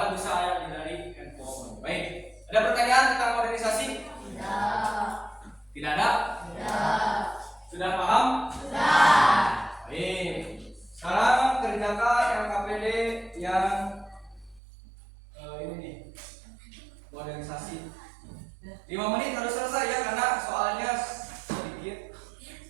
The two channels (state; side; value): drops out; left; at 14.6 s